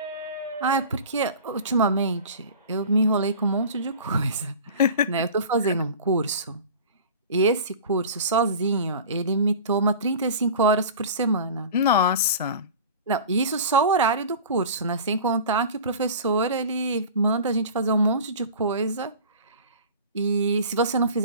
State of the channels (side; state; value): both; inverted; correlation -0.37